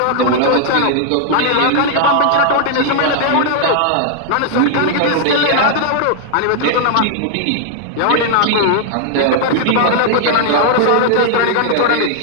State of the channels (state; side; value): different; both; correlation -0.01